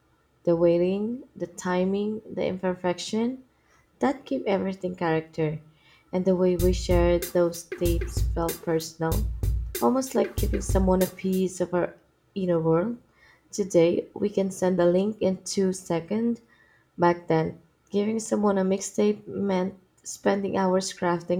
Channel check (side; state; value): both; identical; correlation 1.00